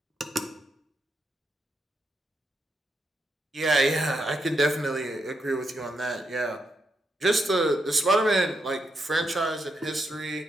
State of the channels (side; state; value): both; normal; correlation 0.82